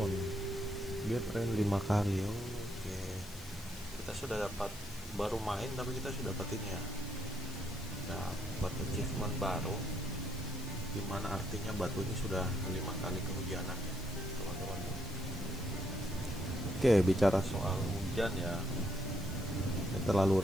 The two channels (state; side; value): noise; left; hiss, 19 dB below the sound